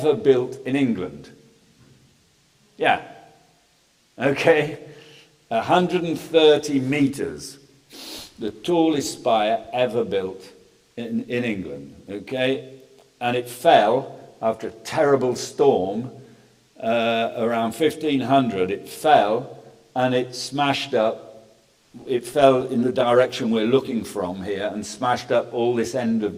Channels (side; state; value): both; identical; correlation 1.00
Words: built in England. Yeah. Okay. 130 metres, the tallest spire ever built in England, okay? And it fell after a terrible storm around 1500. It fell and it smashed up. It fell in the direction we're looking from here and smashed up all this end of